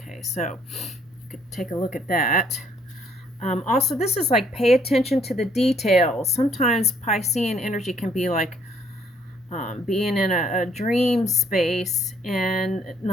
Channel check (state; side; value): normal; both; correlation 0.64